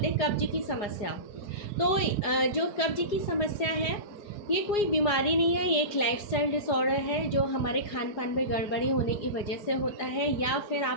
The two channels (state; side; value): late; right; 4.9 ms